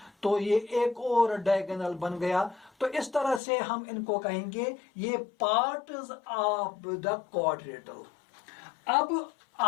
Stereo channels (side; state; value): right; drops out; at 3.4 s